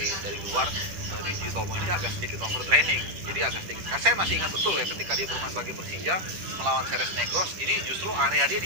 luar, Didi Tomo ini agak sedikit overtraining. Jadi agak sedikit. Saya masih ingat betul ya ketika dia bermain bagi Persija melawan Ceres Negros, ini justru area dia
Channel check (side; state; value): left; late; 10 ms